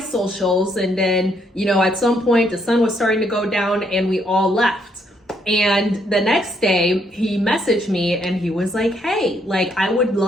And then, at some point, the sun was starting to go down and we all left. And the next day he messaged me and he was like, hey, I would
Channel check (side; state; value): both; normal; correlation 0.72